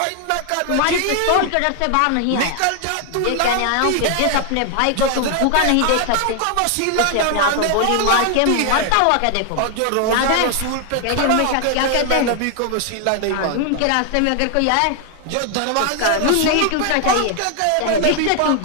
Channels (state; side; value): different; both; correlation 0.00